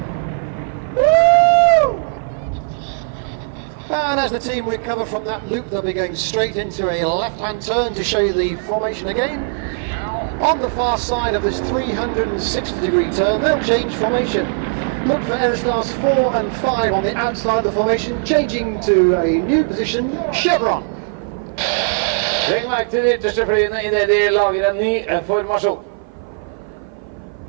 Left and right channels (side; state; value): left; silent; 55 dB below the other